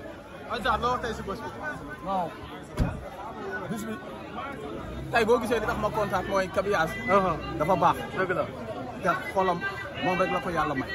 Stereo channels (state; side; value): identical; both; correlation 1.00